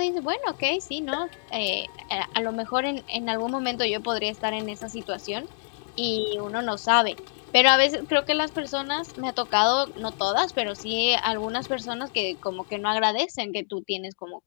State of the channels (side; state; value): right; silent; digital silence